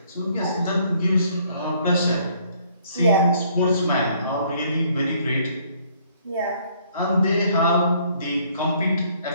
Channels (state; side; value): inverted; both; correlation -0.63